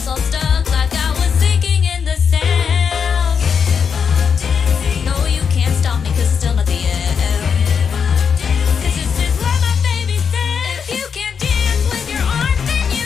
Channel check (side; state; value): right; quieter; 6.6 dB